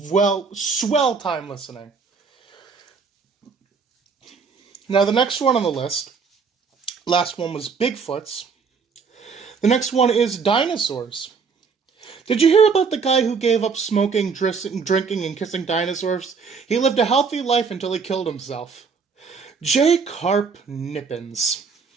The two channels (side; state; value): left; quieter; 5.3 dB